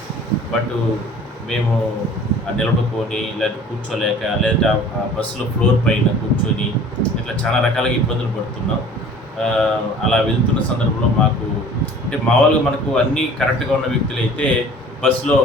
బట్ మేము నిలబడుకొని లేదంటే కూర్చోలేక లేదంటే ఆ బస్సులో ఫ్లోర్ పైన కూర్చొని ఇట్లా చాలా రకాలుగా ఇబ్బందులు పడుతున్నాం. అలా వెళ్తున్న సందర్భంలో మాకు అంటే మామూలుగా మనకు అన్నీ కరెక్ట్గా ఉన్న వ్యక్తులైతే బస్సులో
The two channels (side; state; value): both; normal; correlation 0.47